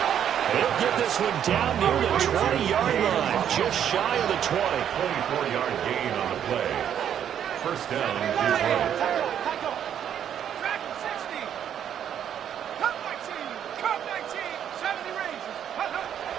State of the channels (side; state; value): left; quieter; 9.4 dB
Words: He'll get this one down near the 20-yard line, just shy of the 20. 24-yard gain on the play. First down is right.